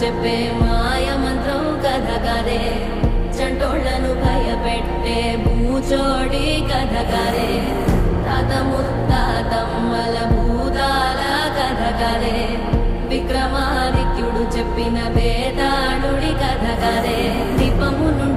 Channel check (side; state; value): both; identical; correlation 1.00